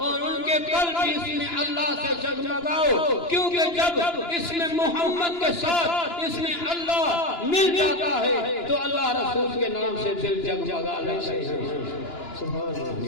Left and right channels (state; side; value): late; right; 2.9 ms